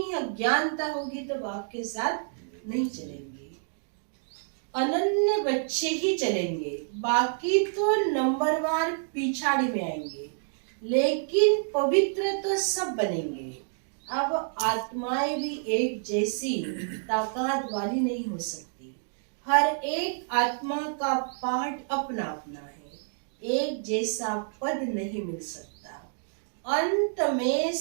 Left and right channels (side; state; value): left; silent; digital silence